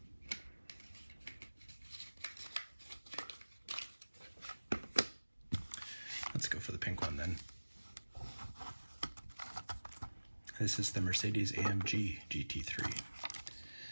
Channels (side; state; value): both; inverted; correlation -1.00